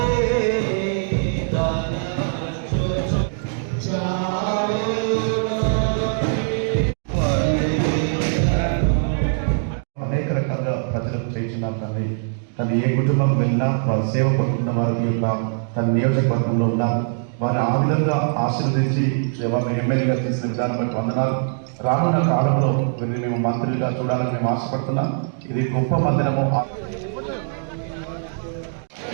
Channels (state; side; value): silent; left; digital silence